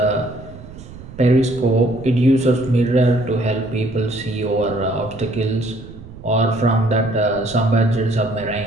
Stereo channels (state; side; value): noise; right; rumble, 16 dB below the sound